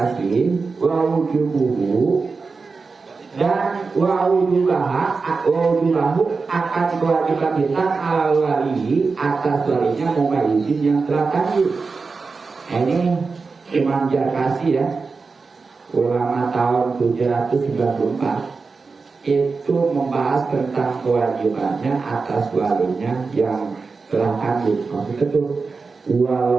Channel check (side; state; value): left; quieter; 4.5 dB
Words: wa wujubuhu dan wa wujubuhu akan kewajiban kita ala wali atas walinya mumayyizin yang telah tadi. Ini Imam Jarkasi ya, ulama tahun 794 itu membahas tentang kewajibannya atas walinya yang telah kandung. Maksudnya itu